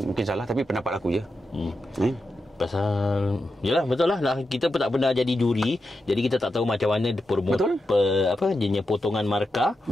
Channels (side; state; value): both; normal; correlation 0.88